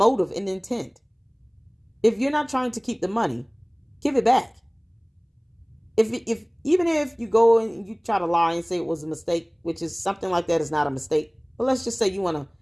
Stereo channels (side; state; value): both; identical; correlation 1.00